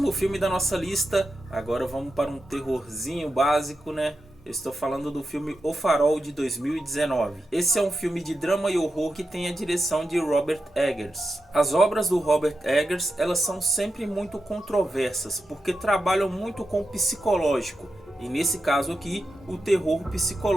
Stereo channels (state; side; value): normal; both; correlation 0.89